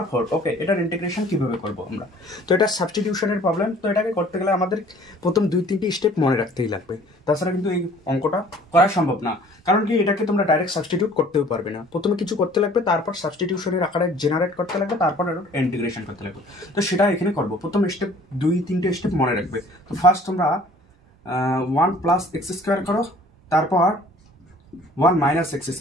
4। ওকে, এটার ইন্টিগ্রেশন কিভাবে করবো আমরা? তো এটা সাবস্টিটিউশনের প্রবলেম। তো এটাকে করতে গেলে আমাদের প্রথম 2-3টি স্টেপ মনে রাখতেই লাগবে, তাছাড়া কিন্তু এই অঙ্কটা করা সম্ভব না। কারণ কি, এটাকে তোমরা ডাইরেক্ট সাবস্টিটিউট করতেও পারবে না। প্রথমে কিছু করতে লাগবে, তারপর সাবস্টিটিউশনের আকারে জেনারেট করতে লাগবে, তারপর ইন্টিগ্রেশন করতে লাগবে। তো সেটা এখানে করবো। প্রথম স্টেপ 2-3টে স্টেপ মনে রাখবে। তো ফার্স্ট তোমরা 1 প্লাস এক্স স্কোয়ার করো, তারপর 1 মাইনাস এক্স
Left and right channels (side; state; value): both; normal; correlation 0.52